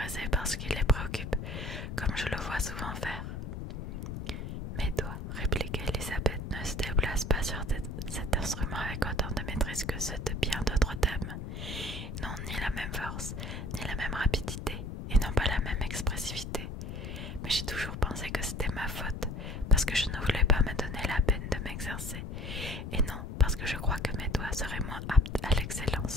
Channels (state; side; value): noise; left; rumble, 7 dB below the sound